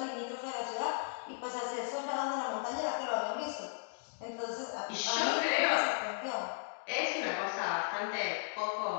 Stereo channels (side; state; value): right; silent; digital silence